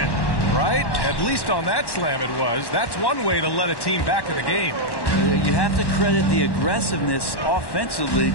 Right? At least on that slam it was. That's one way to let a team back in the game. You have to credit the aggressiveness offensively,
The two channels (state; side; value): late; right; 1.1 ms